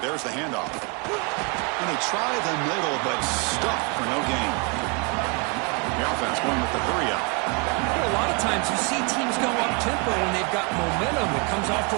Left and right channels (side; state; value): left; quieter; 32.3 dB